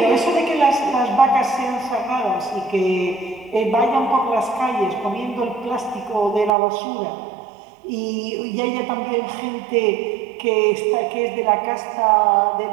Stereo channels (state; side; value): drops out; left; at 6.5 s